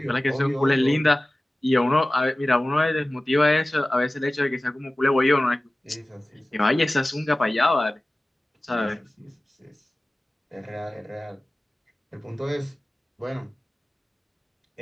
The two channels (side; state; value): both; normal; correlation 0.97